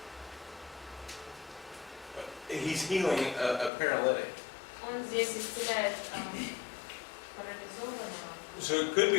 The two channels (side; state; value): right; drops out; at 3.7 s